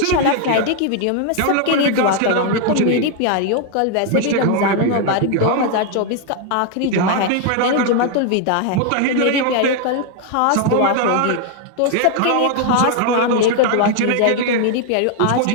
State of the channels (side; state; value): both; different; correlation 0.00